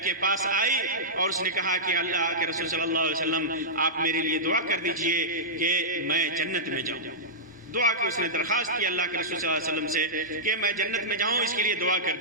کے پاس آئی اور اس نے کہا کہ اللہ کے رسول صلی اللہ علیہ وسلم آپ میرے لیے دعا کر دیجئے کہ میں جنت میں جاؤں۔ دعا کی اس نے درخواست کی اللہ کے رسول صلی اللہ علیہ وسلم سے کہ میں جنت میں جاؤں، اس کے لیے دعا کر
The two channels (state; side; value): normal; both; correlation -0.15